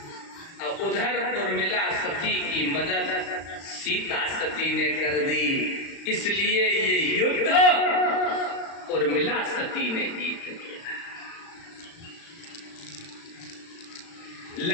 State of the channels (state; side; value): late; right; 36 ms